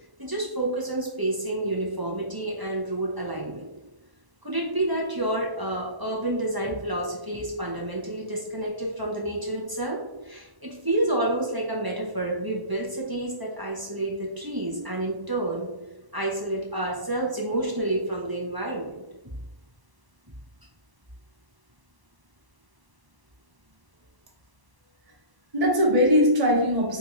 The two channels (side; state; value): left; late; 1.0 ms